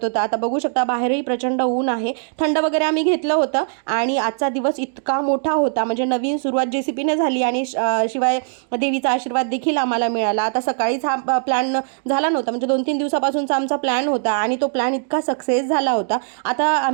होतं. आता बघू शकता बाहेरही प्रचंड ऊन आहे, थंड वगैरे आम्ही घेतलं होतं. आणि आजचा दिवस इतका मोठा होता, म्हणजे नवीन सुरुवात JCPने झाली आणि शिवाय देवीचा आशीर्वाद देखील आम्हाला मिळाला. आता सकाळीच हा प्लॅन झाला नव्हता, म्हणजे 2-3 दिवसापासूनचा आमचा प्लॅन होता आणि तो प्लॅन इतका सक्सेस झाला होता. आता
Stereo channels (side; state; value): left; silent; 63 dB below the other